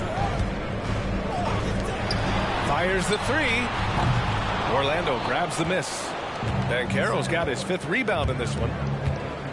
Fires the 3. Orlando grabs the miss. Banchero's got his 5th rebound in this one.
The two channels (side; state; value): both; identical; correlation 1.00